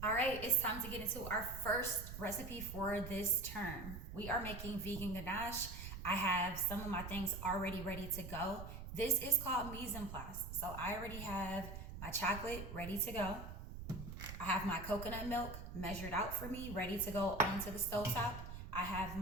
All right, it's time to get into our first recipe for this term. We are making vegan ganache. I have some of my things already ready to go. This is called mise en place. So I already have my chocolate ready to go. I have my coconut milk measured out for me, ready to go onto the stovetop. I have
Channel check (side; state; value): right; noise; rumble, 9 dB below the sound